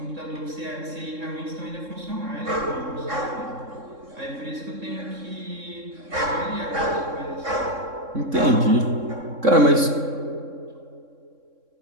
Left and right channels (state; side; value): late; left; 3.6 ms